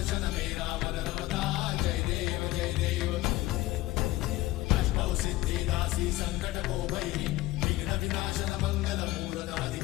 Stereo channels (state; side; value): quieter; right; 17.6 dB